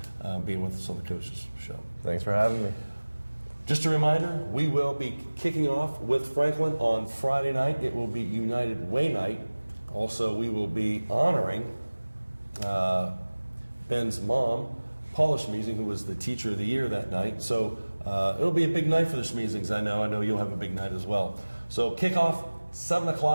being with us on the Coaches Show. Thanks for having me. Just a reminder, we will be kicking off with Franklin on Friday night. It will be United Way night. Also, we will be honoring Ben's mom, Paula Schmeezing, who was the Teacher of the Year that night. So it'll be a big night for the Schmeezings. I know you'll have a big night as well. So kickoff 7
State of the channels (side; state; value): both; inverted; correlation -1.00